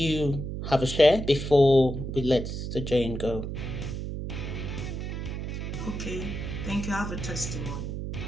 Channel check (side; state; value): right; noise; hum, 5 dB below the sound